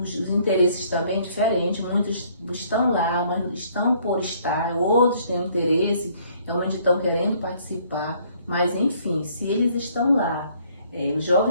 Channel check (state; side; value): inverted; both; correlation -0.62